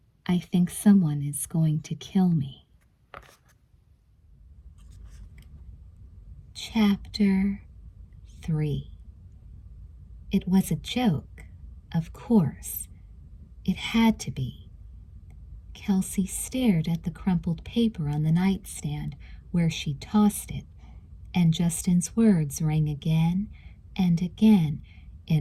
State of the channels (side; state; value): both; identical; correlation 1.00